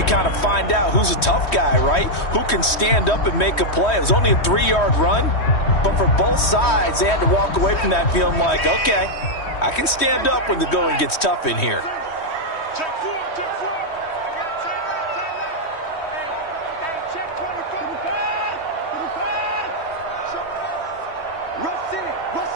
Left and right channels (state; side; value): late; right; 3.1 ms